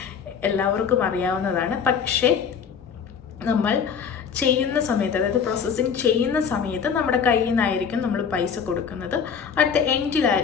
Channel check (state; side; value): quieter; right; 6.9 dB